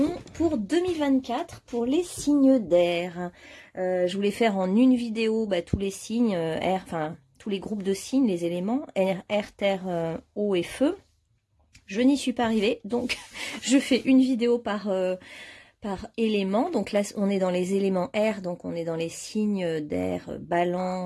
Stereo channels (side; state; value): both; identical; correlation 1.00